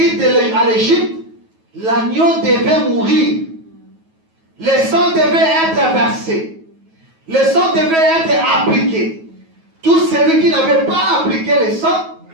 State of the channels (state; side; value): late; left; 9.3 ms